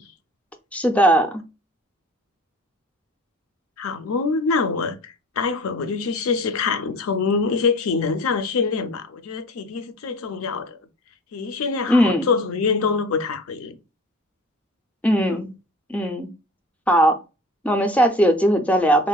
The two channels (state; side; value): normal; both; correlation 0.42